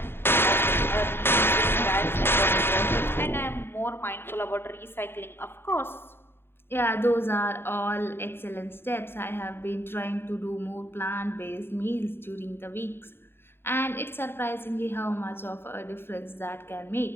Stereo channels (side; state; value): right; late; 0.11 ms